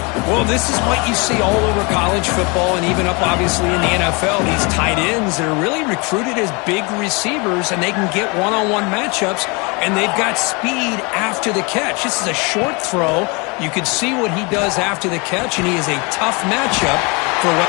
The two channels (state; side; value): quieter; right; 29.4 dB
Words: Well, this is what you see all over college football and even up, obviously, in the NFL. These tight ends, they're really recruited as big receivers, and they can get one-on-one matchups, and they've got speed after the catch. This is a short throw. You can see what he does after the catch, and he is a tough matchup for what...